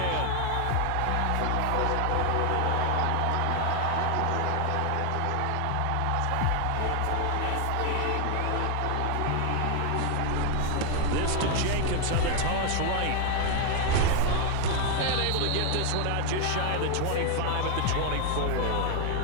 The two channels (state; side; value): different; both; correlation 0.00